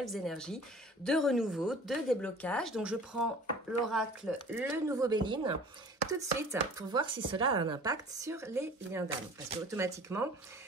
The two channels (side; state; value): both; normal; correlation 0.46